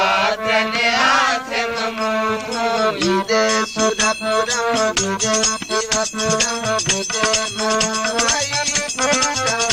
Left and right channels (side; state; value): both; identical; correlation 1.00